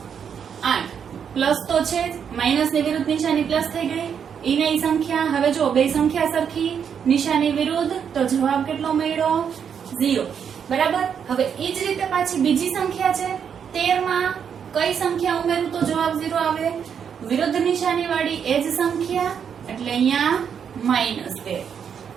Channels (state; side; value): quieter; left; 7.6 dB